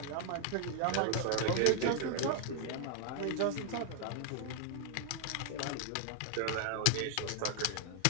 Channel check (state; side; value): different; both; correlation 0.00